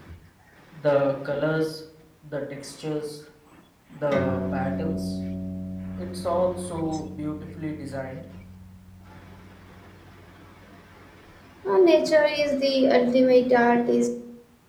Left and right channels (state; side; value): identical; both; correlation 1.00